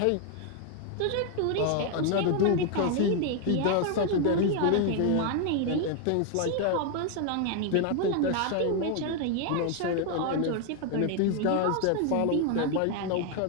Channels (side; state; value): both; different; correlation 0.01